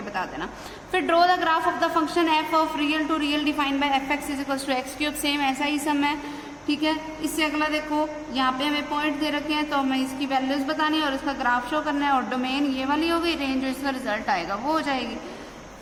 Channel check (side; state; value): both; identical; correlation 1.00